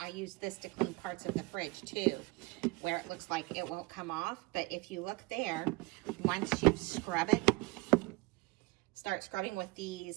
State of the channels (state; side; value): quieter; left; 23.7 dB